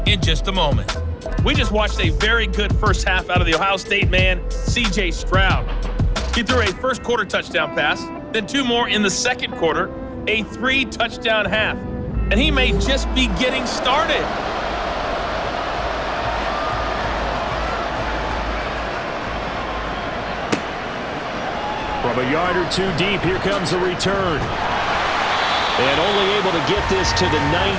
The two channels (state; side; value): identical; both; correlation 1.00